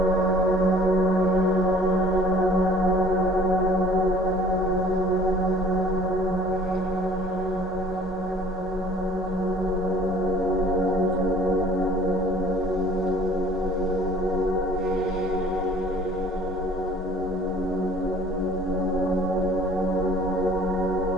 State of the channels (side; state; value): both; normal; correlation 0.52